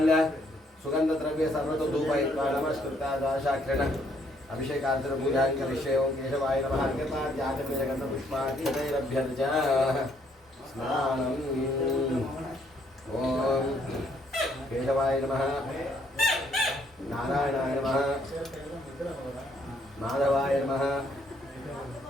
सुगंध द्रव्य सर्वतो धूपयुक्ता द्वादशाक्षरेण अभिषेकार्चन पूजा करिष्ये ओम केशवाय नमः अर्घ्यपाद्याचमनीयगन्ध पुष्पादितैरभ्यर्चा स्नानम् ओम केशवाय नमः नारायणाय नमः माधवाय नमः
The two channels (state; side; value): normal; both; correlation 0.68